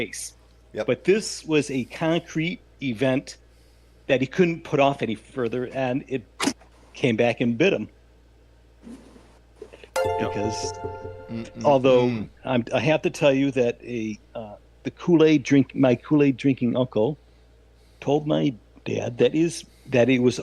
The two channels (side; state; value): both; identical; correlation 1.00